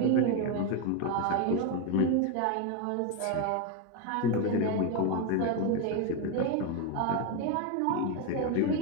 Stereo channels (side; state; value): both; different; correlation 0.02